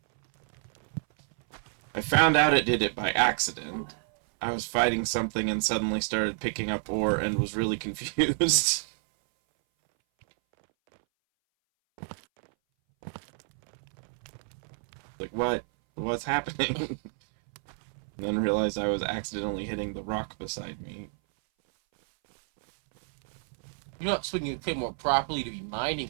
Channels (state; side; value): silent; left; 59 dB below the other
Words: I found out it did it by accident. I was fighting something and suddenly started picking up ore and was really confused. Like, what? What's happening? And then realized I was accidentally hitting the rock beside me. You're not swinging the Claymore properly to be